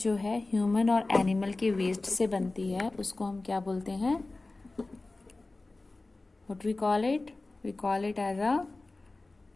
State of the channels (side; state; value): right; quieter; 3.2 dB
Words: जो है ह्यूमन और एनिमल के वेस्ट से बनती है उसको हम क्या बोलते हैं? What we call it? We call it as a